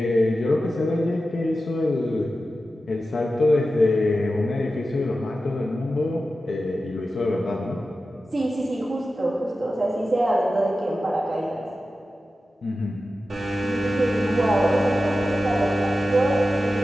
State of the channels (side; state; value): both; normal; correlation 0.93